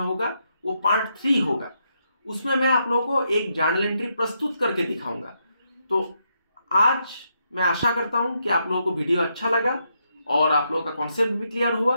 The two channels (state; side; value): inverted; both; correlation -0.79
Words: होगा, वो पार्ट 3 होगा। उसमें मैं आप लोगों को एक जर्नल एंट्री प्रस्तुत करके दिखाऊंगा। तो आज मैं आशा करता हूं कि आप लोगों को वीडियो अच्छा लगा और आप लोगों का कॉन्सेप्ट भी क्लियर हुआ।